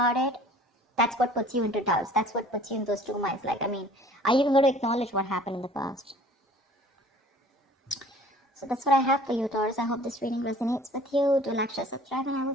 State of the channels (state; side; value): normal; both; correlation 0.50